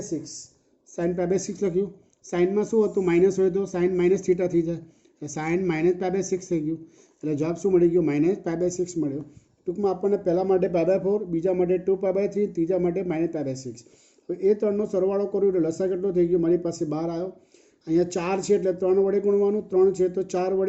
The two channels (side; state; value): both; identical; correlation 1.00